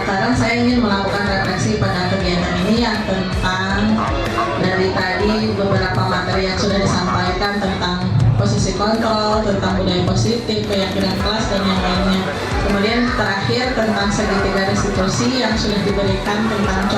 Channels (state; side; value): identical; both; correlation 1.00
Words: saya ingin melakukan refleksi pada kegiatan ini yang tentang dari tadi beberapa materi yang sudah disampaikan tentang posisi kontrol, tentang budaya positif, keyakinan kelas dan yang lainnya. Kemudian terakhir tentang segitiga restitusi yang sudah diberikan tentang